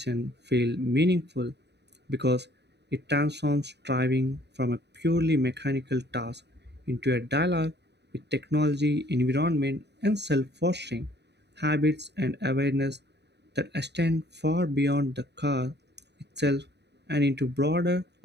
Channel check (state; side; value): late; left; 0.50 ms